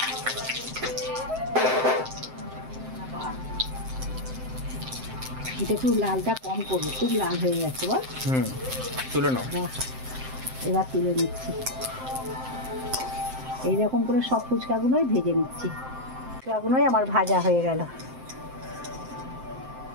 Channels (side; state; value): left; late; 7.7 ms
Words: এটা একটু লালটা কম করবো, খুব লাল হয়ে গেছে বল। তুলে নাও। এবার তুলে নিচ্ছি, এইরকম করে সব ফুচকাগুলোই ভেজে নিচ্ছি। ফুচকাগুলোই আমার ভাজা হয়ে গেল।